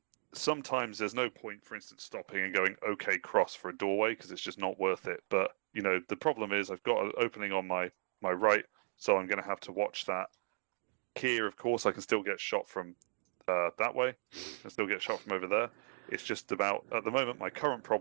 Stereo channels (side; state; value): left; silent; digital silence